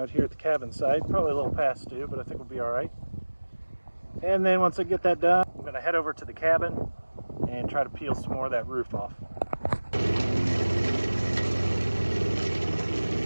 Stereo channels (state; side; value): inverted; both; correlation -1.00